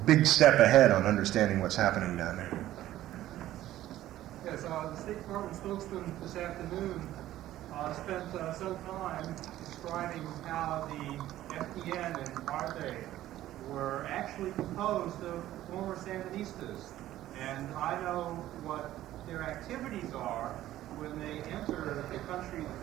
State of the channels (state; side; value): quieter; left; 13.9 dB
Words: big step ahead on understanding what's happening down there. Yes, the State Department spokesman this afternoon spent some time describing how the FDN and ARTE were actually composed of former Sandinistas. And I know what their activities are when they enter the country that